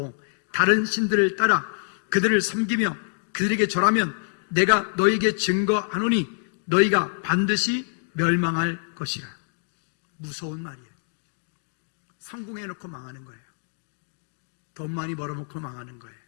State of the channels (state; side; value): silent; right; digital silence